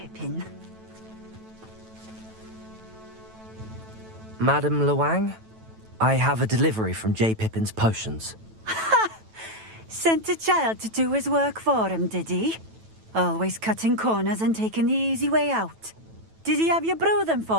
Madam Luang, I have a delivery from J. Pippin's Potions. Sent a child to do his work for him, did he? Always cutting corners and taking the easy way out. Did he have you brew them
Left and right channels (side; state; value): left; late; 9.1 ms